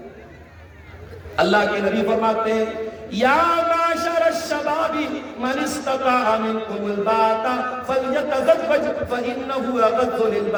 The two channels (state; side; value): identical; both; correlation 1.00